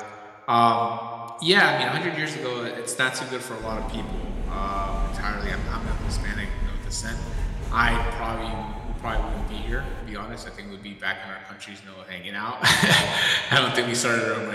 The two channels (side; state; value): both; identical; correlation 1.00